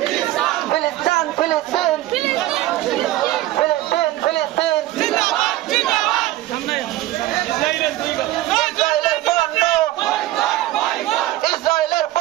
ফিলিস্তিন ফিলিস্তিন ফিলিস্তিন ফিলিস্তিন ইসরায়েলের পণ্য ইসরায়েলের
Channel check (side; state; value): left; quieter; 15.7 dB